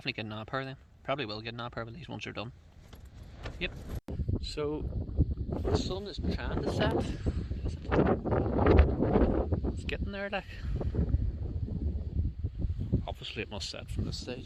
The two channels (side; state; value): both; identical; correlation 1.00